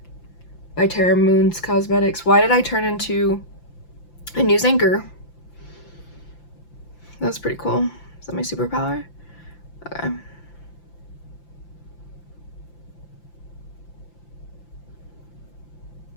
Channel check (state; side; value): late; right; 5.8 ms